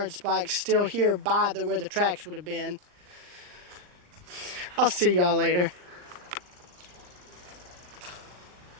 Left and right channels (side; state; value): left; late; 39 ms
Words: spikes still here by where the tracks would have been. I'll see y'all later.